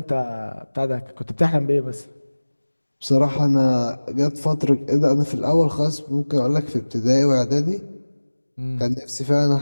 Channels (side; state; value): both; inverted; correlation -1.00